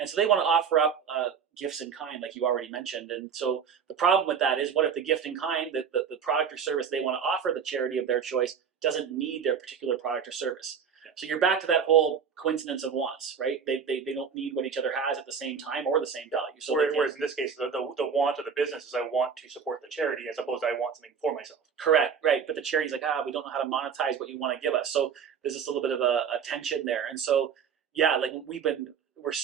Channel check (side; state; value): left; quieter; 6.8 dB